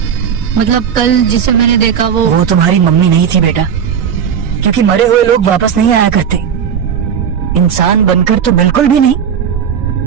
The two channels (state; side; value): quieter; left; 8.0 dB